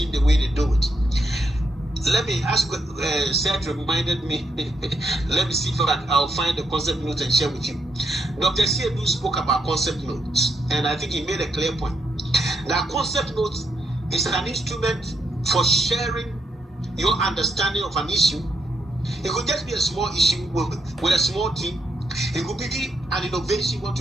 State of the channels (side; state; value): both; normal; correlation 0.79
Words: the way they do it. Let me ask, Seth reminded me, let me see if I'll find the concept notes and share with you. Dr. Siedu spoke about concept notes, and I think he made a clear point. That concept notes is an instrument for sharing your understanding of an issue. It could just be a small issue with a small team. It could be an innovation you want